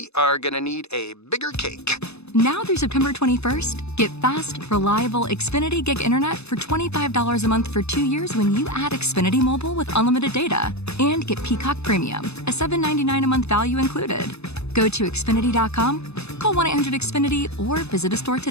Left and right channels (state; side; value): late; right; 0.80 ms